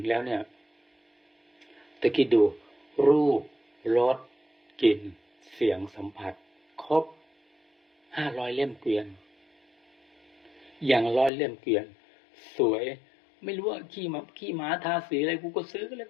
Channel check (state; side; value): drops out; right; at 11.3 s